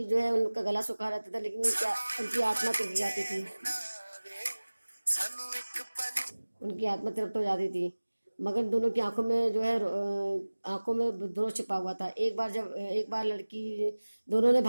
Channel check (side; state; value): both; inverted; correlation -1.00